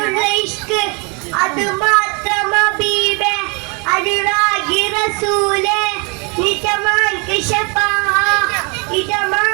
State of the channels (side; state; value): left; quieter; 32.9 dB